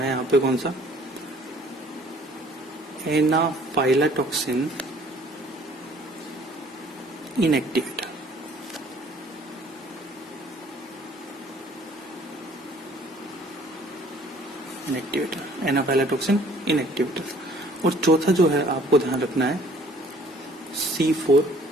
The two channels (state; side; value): normal; both; correlation 0.56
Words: यहाँ पे कौन सा, एनाफाइलाटॉक्सिन इनएक्टिवेटर। इनएक्टिवेटर, एनाफाइलाटॉक्सिन इनएक्टिवेटर। और चौथा जो है आपको ध्यान रखना है C4